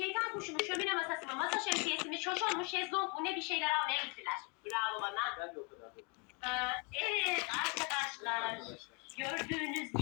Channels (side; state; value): right; quieter; 33.4 dB